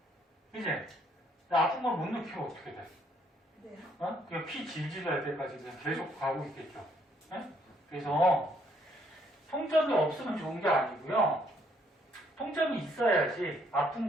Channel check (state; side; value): normal; both; correlation 0.68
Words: 이제 아픈 걸 못 느끼면 어떻게 돼? 네. 그냥 피 질질 날 때까지 그냥 계속 가고 있겠죠. 응? 그래서 통점이 없으면 좋은 게 아니고요. 통점이 있어야지 아픈